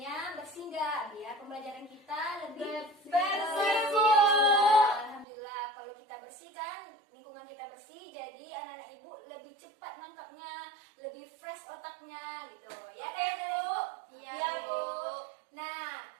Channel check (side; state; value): left; drops out; at 5.2 s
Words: bersih nggak? Biar pembelajaran kita lebih Bersih, Bu. Alhamdulillah, kalau kita bersihkan, lingkungan kita bersih, jadi anak-anak ibu lebih cepat nangkapnya, lebih fresh otaknya gitu. Ya kan, anak-anak ibu? Iya, Bu. Nah,